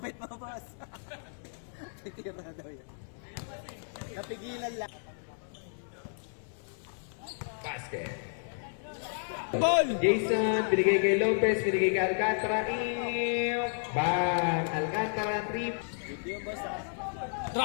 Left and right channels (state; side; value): silent; right; 56 dB below the other